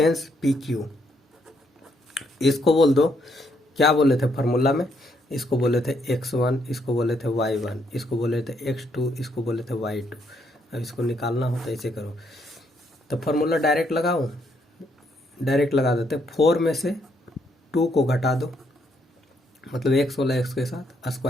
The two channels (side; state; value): both; normal; correlation 0.73